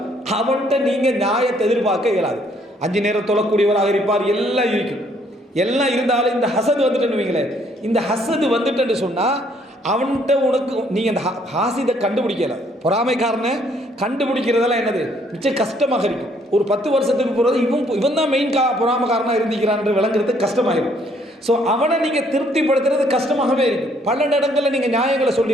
அவன்கிட்ட நீங்கள் நியாயத்தை எதிர்பார்க்க இயலாது. 5 நேரம் தொழக்கூடியவராக இருப்பார், எல்லாம் இருக்கும். எல்லாம் இருந்தாலும் இந்த ஹசது வந்துட்டுன்னு வைங்களேன். இந்த ஹசது வந்துட்டுன்னு சொன்னால் அவன்கிட்ட உனக்கு நீங்கள் அந்த ஹாசிதை கண்டுபிடிக்கல. பொறாமைக்காரனை கண்டுபிடிக்கிறதெல்லாம் என்னது மிச்சம் கஷ்டமாக இருக்கும். ஒரு 10 வருஷத்துக்கு போகிறது இவன் தான் மெயின் பொறாமைக்காரனாக இருந்திக்கிறான் என்று விளங்குறதுக்கு கஷ்டமாகிடும். ஸோ அவனை நீங்கள் திருப்திப்படுத்துறது கஷ்டமாகவே இருக்கும். பல இடங்களில் நீங்கள் நியாயங்களை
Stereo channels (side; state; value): both; normal; correlation 0.65